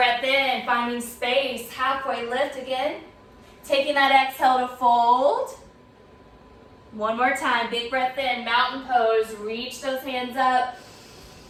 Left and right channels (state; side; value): identical; both; correlation 1.00